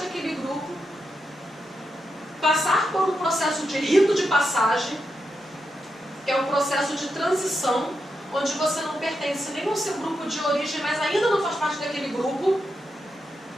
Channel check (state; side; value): normal; both; correlation 0.85